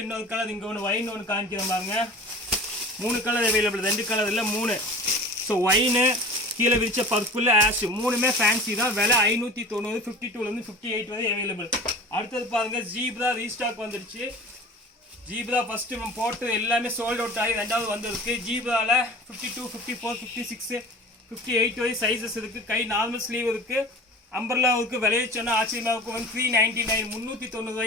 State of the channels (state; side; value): normal; both; correlation 0.38